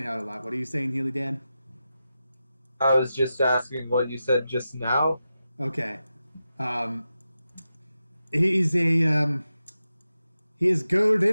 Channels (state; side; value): inverted; both; correlation -0.91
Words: out a lot. What are you saying, Healy Dan? I was just asking what you said just now. Okay. He's a, he is